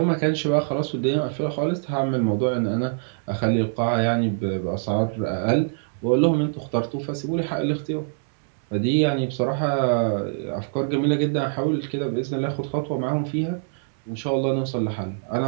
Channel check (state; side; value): silent; left; digital silence